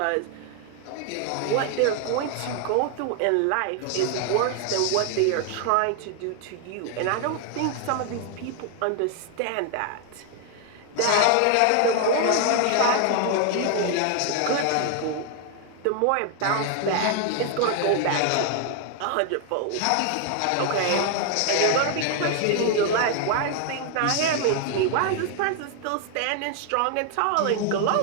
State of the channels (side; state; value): both; different; correlation 0.00